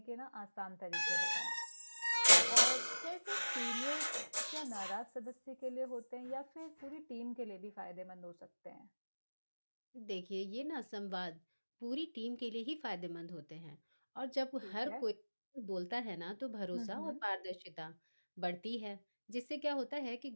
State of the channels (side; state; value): both; inverted; correlation -1.00